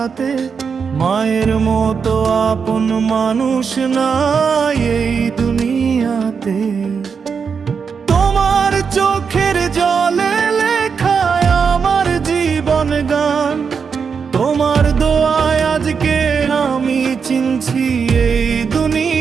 মায়ের মতো আপন মানুষ নাই এই দুনিয়াতে। তোমার চোখের জলে লেখায় আমার জীবন গান, তোমার দোয়ায় আজকে আমি চিনছি এই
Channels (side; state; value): left; quieter; 6.0 dB